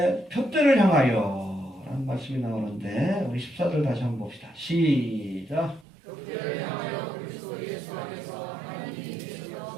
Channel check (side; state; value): left; drops out; at 5.9 s